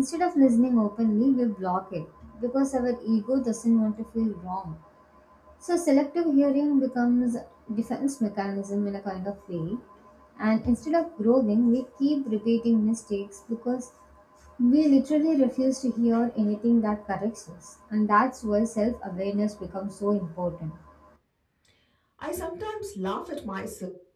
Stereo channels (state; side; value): identical; both; correlation 1.00